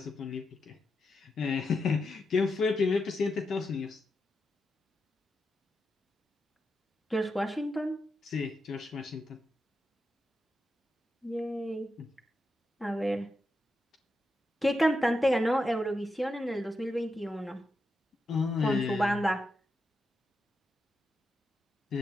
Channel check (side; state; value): both; normal; correlation 0.86